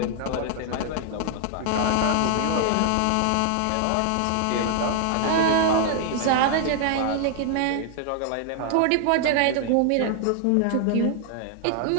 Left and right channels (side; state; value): both; different; correlation 0.00